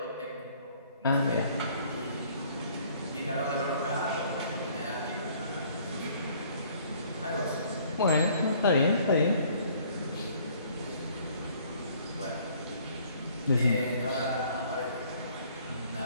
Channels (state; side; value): inverted; both; correlation -0.59